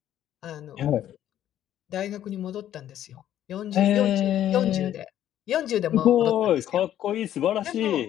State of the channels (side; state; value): right; quieter; 11.5 dB